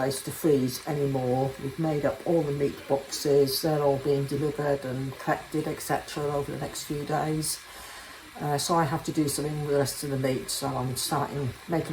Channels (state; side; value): identical; both; correlation 1.00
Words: to freeze anymore. We've made up all the meat boxes. They're all being delivered and collected, etc. over the next few days. So I have to do something with the rest of the meat. So I'm